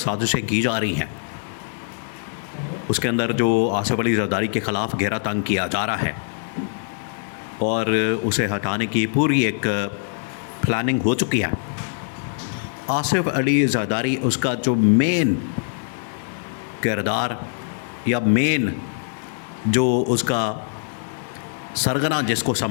की जा रही हैं, उसके अंदर जो आसिफ अली जरदारी के ख़िलाफ़ घेरा तंग किया जा रहा है और उसे हटाने की पूरी एक प्लानिंग हो चुकी है। आसिफ अली जरदारी उसका जो मेन किरदार या मेन जो उसका सरगना जिसको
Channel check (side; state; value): right; silent; digital silence